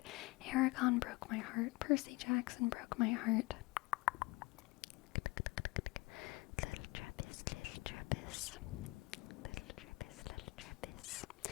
Aragon broke my heart. Percy Jackson broke my heart. Little Trappist, little Trappist. Little Trappist, little Trappist.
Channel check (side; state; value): right; quieter; 23.3 dB